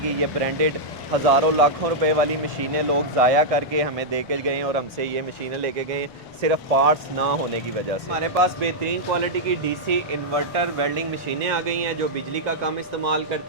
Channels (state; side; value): noise; right; rumble, 29 dB below the sound